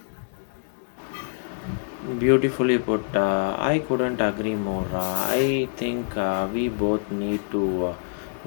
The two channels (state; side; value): silent; right; digital silence